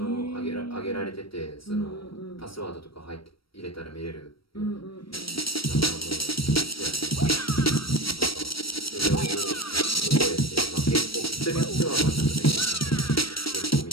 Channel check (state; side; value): late; right; 0.75 ms